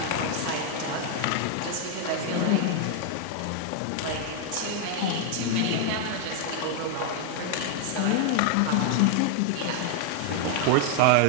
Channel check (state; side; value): different; both; correlation 0.00